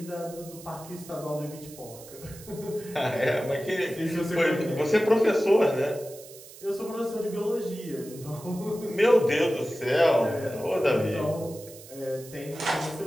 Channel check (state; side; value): noise; right; hiss, 18 dB below the sound